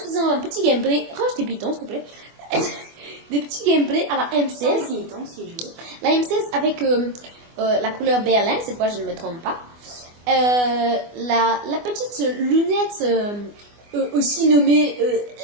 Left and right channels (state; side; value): late; left; 24 ms